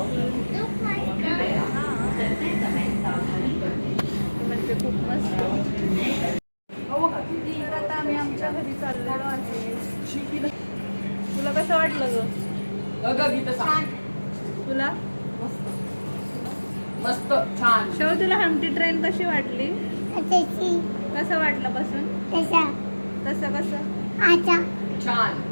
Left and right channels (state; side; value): inverted; both; correlation -1.00